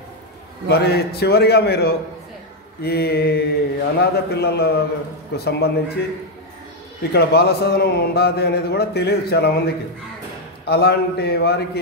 మరి చివరిగా మీరు ఈ అనాథ పిల్లలకు సంబంధించి ఇక్కడ బాలసదనం ఉండాలి అనేది కూడా తెలియదు చాలా మందికి. అలాంటి వారికి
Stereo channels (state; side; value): normal; both; correlation 0.02